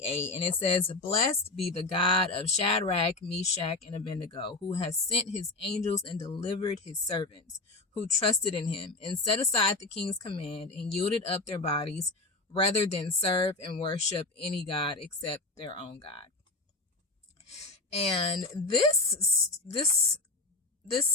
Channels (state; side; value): quieter; right; 3.2 dB